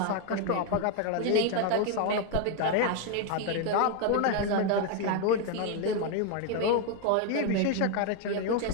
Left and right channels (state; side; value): different; both; correlation 0.01